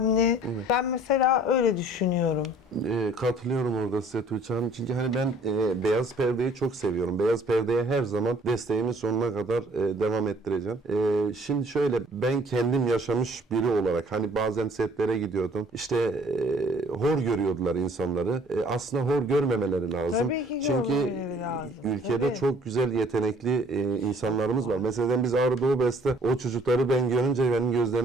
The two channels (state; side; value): normal; both; correlation 0.57